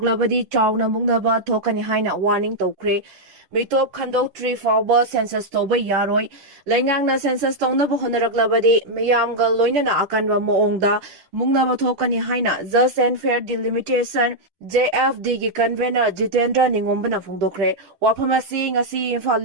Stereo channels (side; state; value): left; late; 10 ms